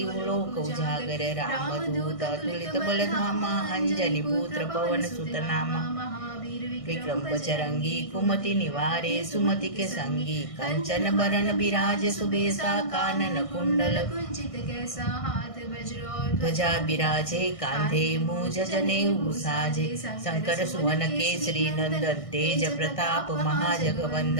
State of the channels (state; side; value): late; right; 1.6 ms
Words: लोक उजागर। रामदूत अतुलित बल धामा अंजनी पुत्र पवन सुत नामा। विक्रम बजरंगी कुमति निवारे सुमति के संगी। कंचन बरन बिराज सुबेसा कानन कुंडल कुंचित कैसा। हाथ वज्र ध्वजा बिराजे कांधे मूज जनेऊ साजे शंकर सुवन केसरी नंदन तेज प्रताप